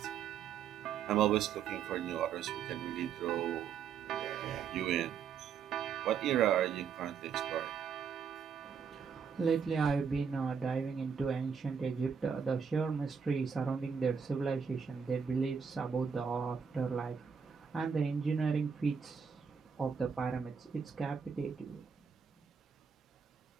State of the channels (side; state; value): left; quieter; 6.6 dB